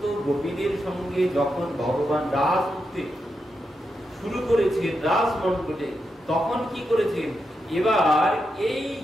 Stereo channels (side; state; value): both; normal; correlation 0.86